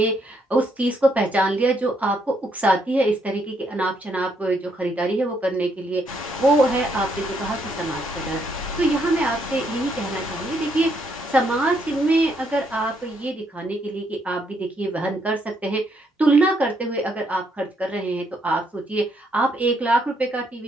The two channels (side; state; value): both; normal; correlation 0.74